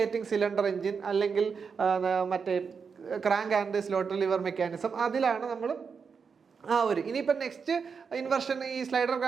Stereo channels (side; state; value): left; quieter; 5.8 dB